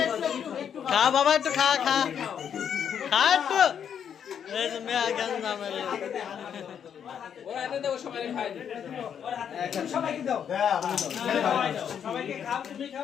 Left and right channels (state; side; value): quieter; right; 8.3 dB